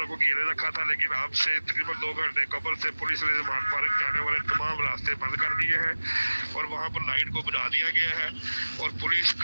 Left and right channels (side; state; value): both; inverted; correlation -1.00